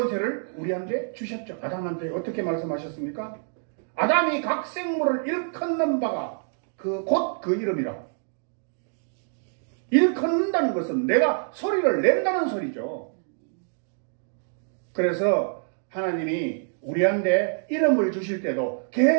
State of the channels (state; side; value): silent; left; 61 dB below the other